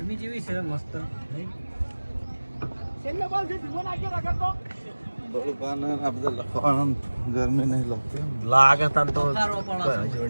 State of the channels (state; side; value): inverted; both; correlation -1.00